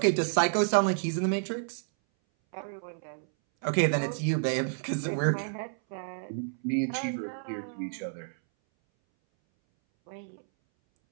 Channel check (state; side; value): silent; left; 58 dB below the other